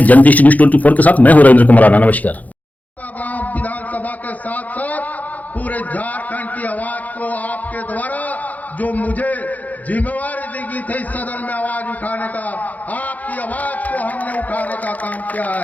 जनदृष्टि न्यूज 24 के साथ। मैं हूं रविंद्र कुमार, नमस्कार। विधानसभा के साथ साथ पूरे झारखंड की आवाज को आपके द्वारा जो मुझे जिम्मेवारी दी गई थी सदन में आवाज उठाने का, आपकी आवाज को हमने उठाने का काम किया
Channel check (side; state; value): right; late; 0.078 ms